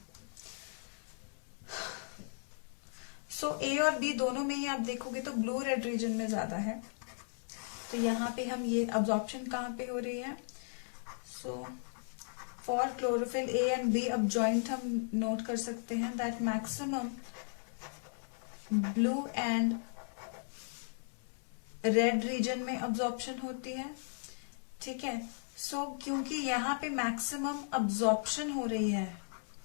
So A और B दोनों में ही आप देखोगे तो ब्लू रेड रीजन में ज्यादा है, तो यहाँ पे हम ये अब्जॉर्प्शन कहाँ पे हो रही है। So for chlorophyll A and B अब जॉइंट हम नोट कर सकते हैं that maximum blue and red region में अब्जॉर्प्शन होती है। ठीक है, सो क्योंकि यहाँ पे मैक्सिमम अब्जॉर्प्शन हो रही है,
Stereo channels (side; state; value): right; silent; digital silence